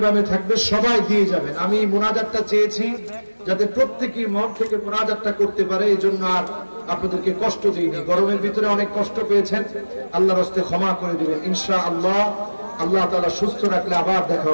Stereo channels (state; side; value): inverted; both; correlation -1.00